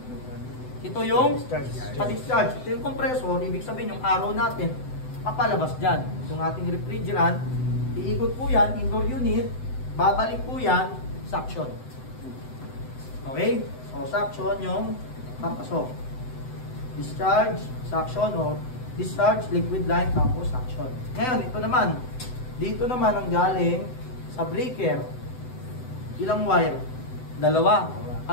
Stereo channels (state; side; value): late; right; 7.9 ms